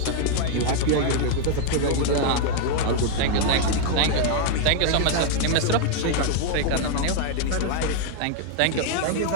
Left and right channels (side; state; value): both; different; correlation 0.00